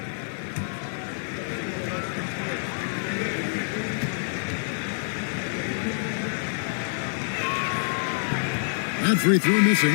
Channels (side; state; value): right; silent; digital silence